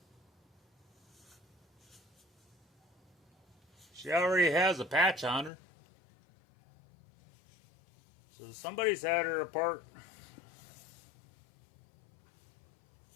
she already has a patch on her. So somebody's had her apart.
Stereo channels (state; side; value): drops out; right; at 5.5 s